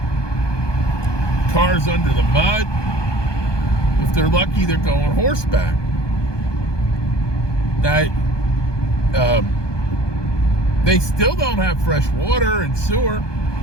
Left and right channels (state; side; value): late; right; 1.2 ms